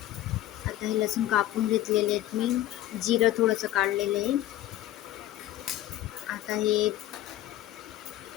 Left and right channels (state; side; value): quieter; right; 14.2 dB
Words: आता हे लसूण कापून घेतलेले आहेत मी, जिरं थोडंसं काढलेलं आहे. आता हे